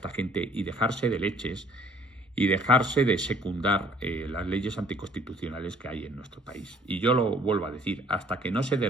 gente y dejarse de leches y dejarse de secundar las leyes anticonstitucionales que hay en nuestro país. Y yo lo vuelvo a decir, hasta que no se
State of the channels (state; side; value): normal; both; correlation 0.57